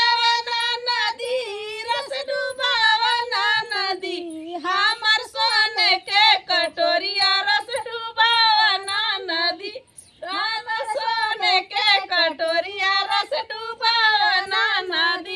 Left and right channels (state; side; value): identical; both; correlation 1.00